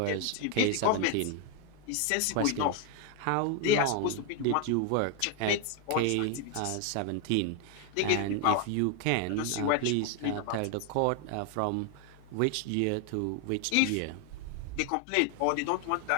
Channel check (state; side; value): different; both; correlation 0.01